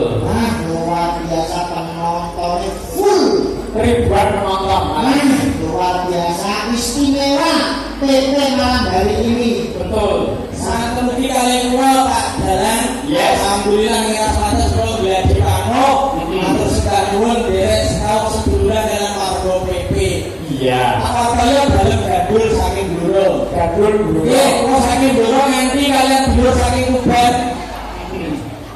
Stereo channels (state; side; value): identical; both; correlation 1.00